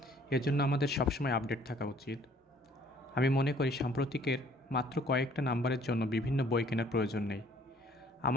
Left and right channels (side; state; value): both; normal; correlation 0.58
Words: এজন্য আমাদের সবসময় আপডেট থাকা উচিত। আমি মনে করি সাম্প্রতিকের মাত্র কয়েকটা নাম্বারের জন্য বিভিন্ন বই কেনার প্রয়োজন নেই।